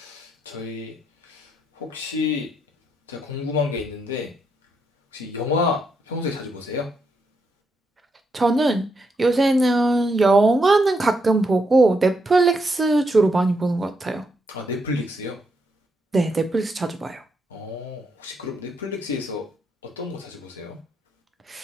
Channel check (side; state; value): both; normal; correlation 0.79